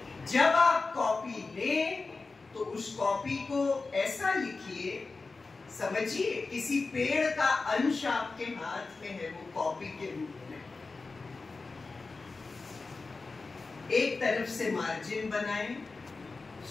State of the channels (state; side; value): quieter; right; 3.9 dB